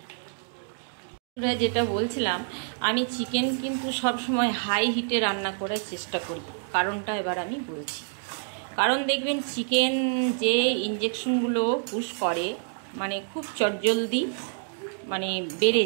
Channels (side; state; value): left; silent; digital silence